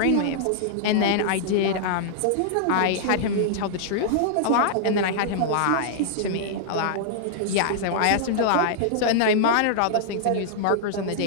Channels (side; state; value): both; different; correlation -0.01